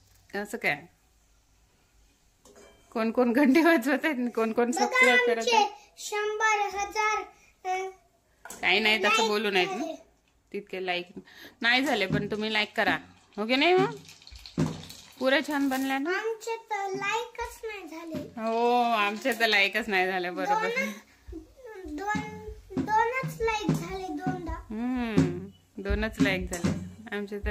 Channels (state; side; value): identical; both; correlation 1.00